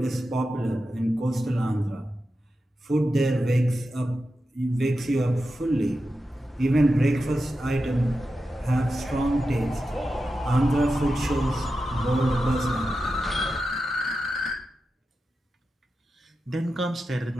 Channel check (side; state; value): both; normal; correlation 0.90